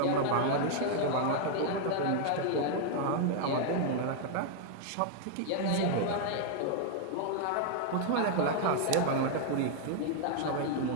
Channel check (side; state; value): both; different; correlation 0.00